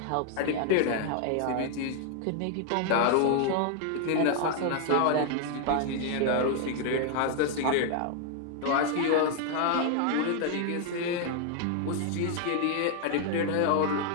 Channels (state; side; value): different; both; correlation 0.00